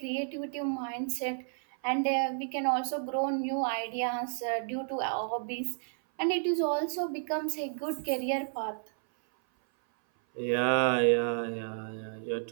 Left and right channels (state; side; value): silent; left; 57 dB below the other